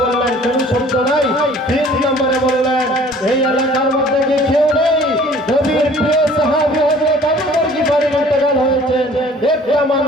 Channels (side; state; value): both; normal; correlation 0.51